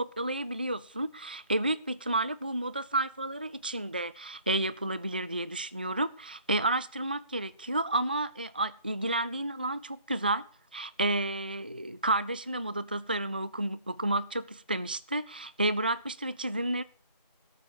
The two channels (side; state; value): both; inverted; correlation -0.56